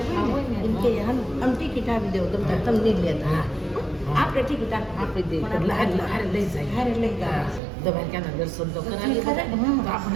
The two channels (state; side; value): drops out; left; at 7.6 s